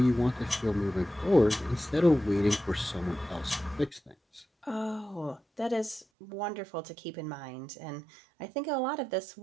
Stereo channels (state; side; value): drops out; left; at 6.1 s